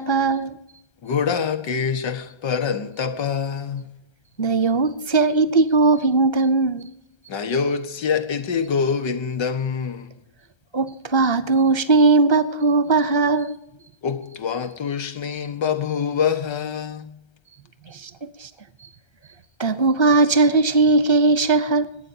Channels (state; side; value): late; right; 1.3 ms